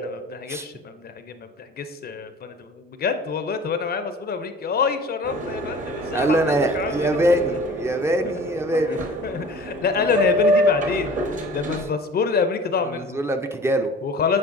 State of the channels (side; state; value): both; normal; correlation 0.43